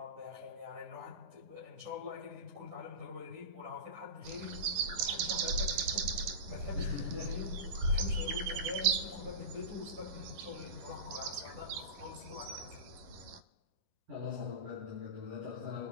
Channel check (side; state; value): left; late; 11 ms